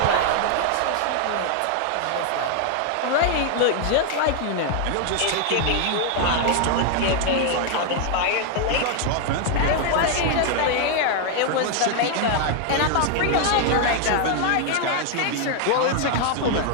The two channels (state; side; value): different; both; correlation 0.00